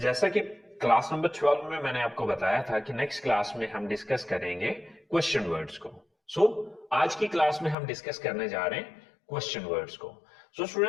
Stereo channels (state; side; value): drops out; right; at 7.8 s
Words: कि class number 12 में मैंने आपको बताया था कि नेक्स्ट क्लास में हम डिस्कस करेंगे क्वेश्चन वर्ड्स को। सो आज की क्लास में हम डिस्कस करने जा रहे हैं क्वेश्चन वर्ड्स को। सो